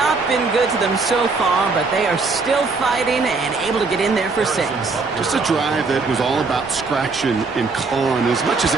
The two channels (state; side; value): quieter; left; 4.1 dB